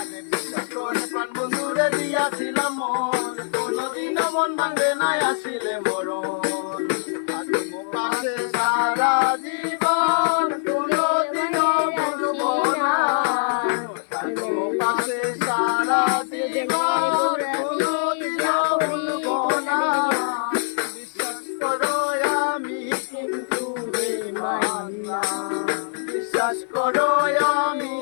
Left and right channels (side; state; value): right; silent; 56 dB below the other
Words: বিশ্বাস করে প্রাণ বন্ধুরে দিয়াছিলাম মন, কোনোদিনও মন ভাঙবে না আসিলে মরণ। থাকবো পাশে সারা জীবন, কোনোদিনও ভুলবো না। থাকবো পাশে সারা জীবন, কোনোদিনও ভুলবো না। বিশ্বাস করো আমি কিন্তু বেঈমান না, বিশ্বাস করো আমি